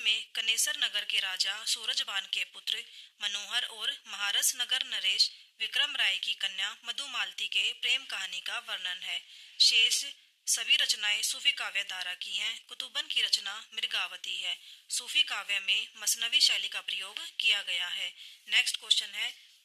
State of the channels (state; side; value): identical; both; correlation 1.00